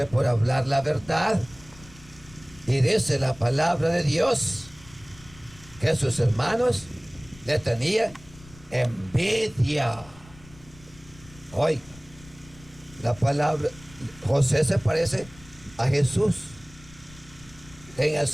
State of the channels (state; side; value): noise; left; rumble, 22 dB below the sound